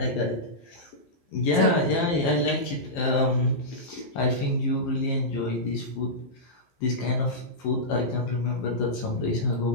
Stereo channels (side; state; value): right; late; 11 ms